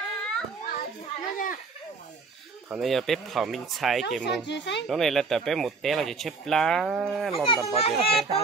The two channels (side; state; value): left; quieter; 4.3 dB